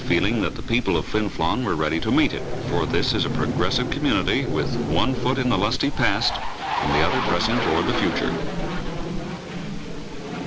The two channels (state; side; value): identical; both; correlation 1.00